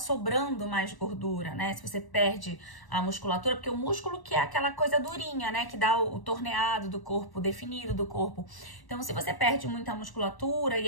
mais gordura, né? Se você perde a musculatura, porque o músculo que é aquela coisa durinha, né? Que dá o torneado do corpo, definido do corpo. Então, se você perde muita musculatura e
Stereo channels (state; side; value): late; right; 1.1 ms